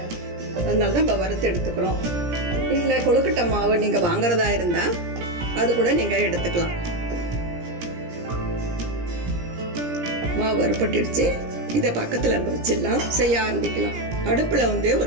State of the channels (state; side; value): late; left; 17 ms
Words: அதனால தான் இப்போ வறுத்து எடுத்துக்கிறோம். இல்லை கொழுக்கட்டை மாவு நீங்கள் வாங்குறதா இருந்தால் அது கூட நீங்கள் எடுத்துக்கலாம். மாவு வறுப்பட்டுடுச்சு. இதை பக்கத்தில் வச்சிடலாம், செய்ய ஆரம்பிக்கலாம். அடுப்பில்